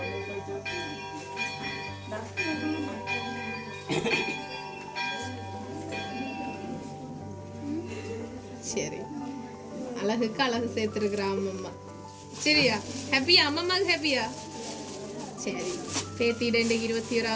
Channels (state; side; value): identical; both; correlation 1.00